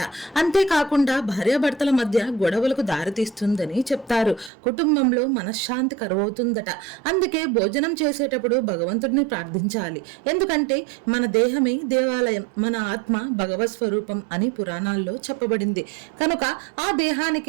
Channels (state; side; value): drops out; left; at 4.5 s